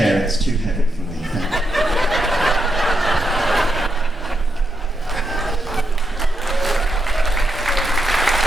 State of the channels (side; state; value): both; normal; correlation 0.83